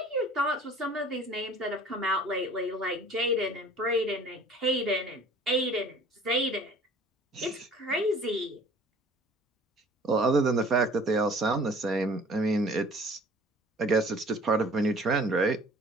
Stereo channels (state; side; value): normal; both; correlation 0.50